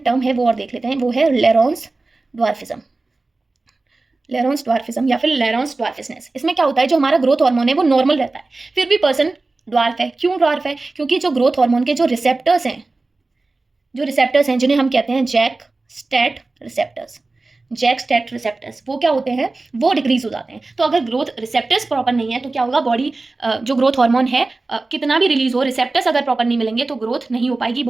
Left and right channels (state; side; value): quieter; left; 3.4 dB